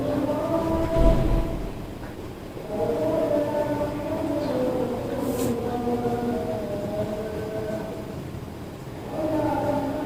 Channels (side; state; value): both; identical; correlation 1.00